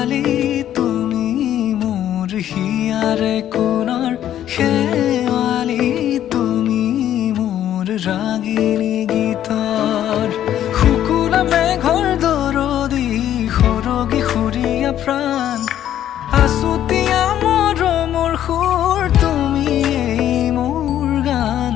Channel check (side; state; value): right; quieter; 11.3 dB